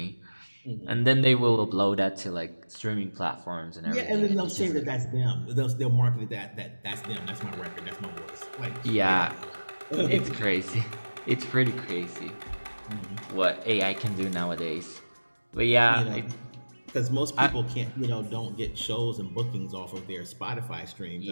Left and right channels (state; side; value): inverted; both; correlation -1.00